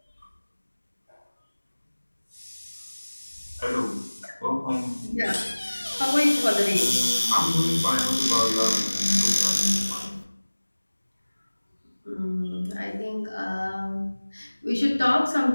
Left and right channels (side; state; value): both; inverted; correlation -1.00